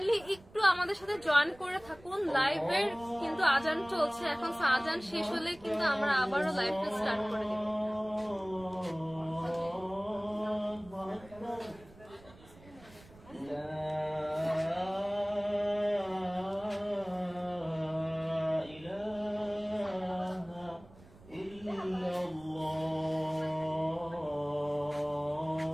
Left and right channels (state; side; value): noise; right; rumble, 22 dB below the sound